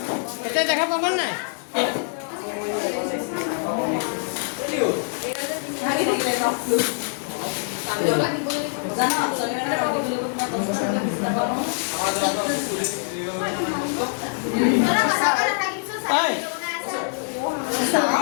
এতিয়া দেখা পাবা নাই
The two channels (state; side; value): silent; right; 61 dB below the other